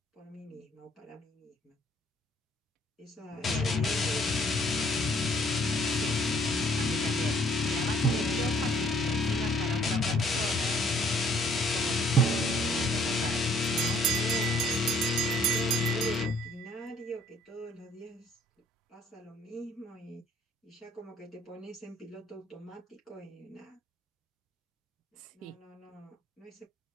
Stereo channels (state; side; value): normal; both; correlation 0.60